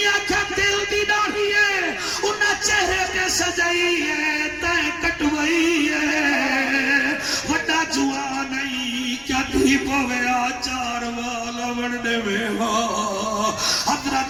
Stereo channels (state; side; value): noise; left; rumble, 24 dB below the sound